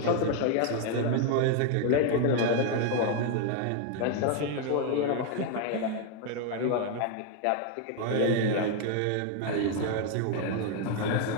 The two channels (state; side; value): different; both; correlation 0.00